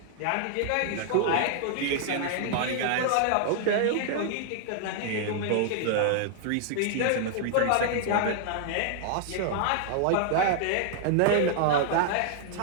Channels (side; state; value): both; different; correlation -0.01